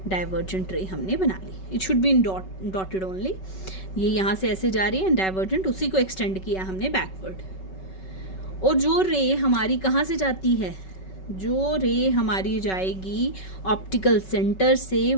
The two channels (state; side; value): late; right; 5.3 ms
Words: डाइवर्जेंट रे हमने बना ली, it should be in dotted only. ये यहाँ से ऐसे जा रही है डाइवर्जेंट, उसी को एक्सटेंड किया हमने बैकवर्ड। और जो रे हमारी कहाँ से जाती है, जो रे हमारी जाएगी ऑप्टिकल सेंटर से,